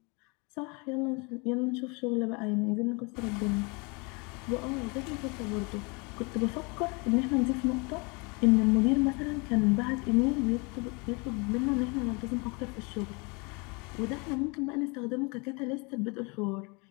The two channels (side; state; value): right; quieter; 29.9 dB